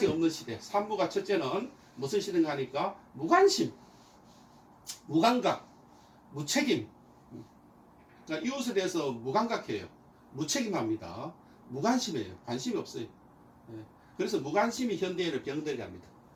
없는 시대. 산무가 첫째는 무슨 시대인가 하니까 무관심, 무감각, 무책임. 그러니까 이웃에 대해서 무감각해요. 무책임합니다. 무관심해요. 관심이 없어요. 그래서 무관심이 현대인을 병들게 합니다.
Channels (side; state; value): both; identical; correlation 1.00